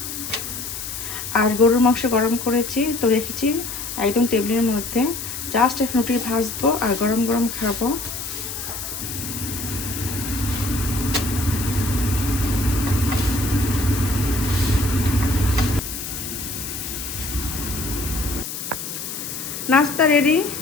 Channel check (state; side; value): noise; left; hiss, 7 dB below the sound